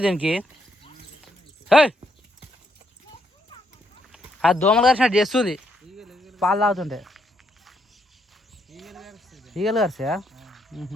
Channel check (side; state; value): both; normal; correlation 0.76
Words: దీనికి. అది దోమలు కరిచినట్టు చేస్తుంది పాలు తాగుతుంటే. ఈగలు కరిసా?